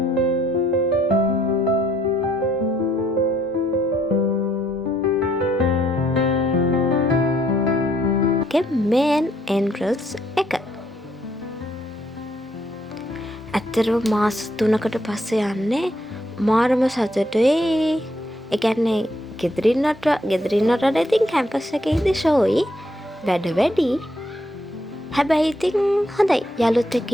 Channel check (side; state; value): both; normal; correlation 0.71